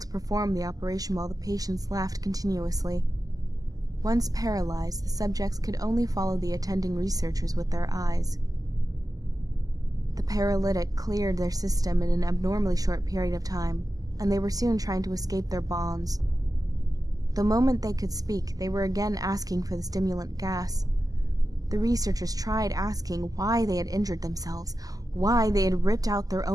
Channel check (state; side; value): late; left; 0.17 ms